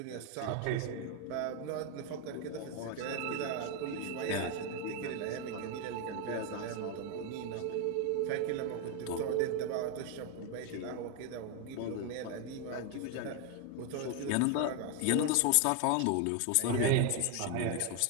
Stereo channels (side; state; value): both; different; correlation 0.01